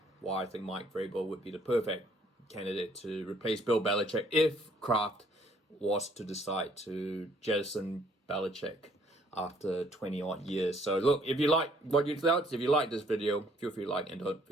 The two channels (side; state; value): both; normal; correlation 0.63